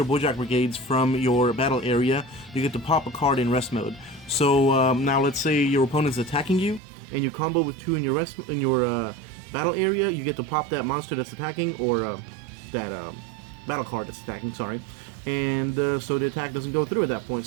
Boujack Brigades from your battle area, you get to pop a card in rest mode. So now let's say your opponent's attacking you, and you combo with two in your battle area, you get to pop that monster that's attacking, or that battle card that's attacking, sorry. And so the attack doesn't go through at that point.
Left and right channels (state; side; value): drops out; left; at 6.8 s